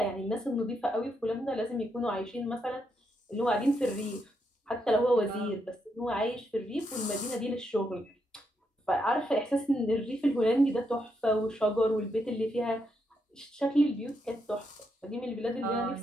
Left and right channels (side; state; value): both; normal; correlation 0.80